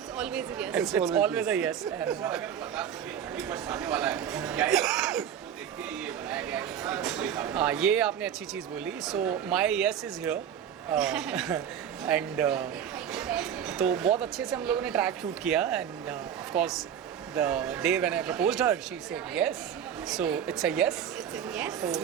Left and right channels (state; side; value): quieter; left; 9.0 dB